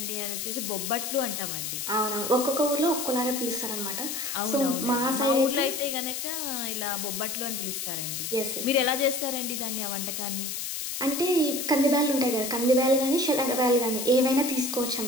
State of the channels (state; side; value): noise; left; hiss, 4 dB below the sound